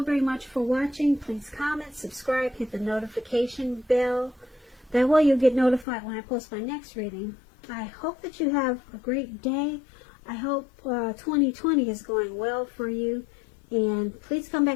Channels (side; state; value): right; drops out; at 5.9 s